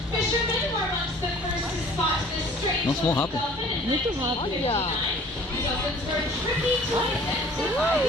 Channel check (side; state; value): both; normal; correlation 0.50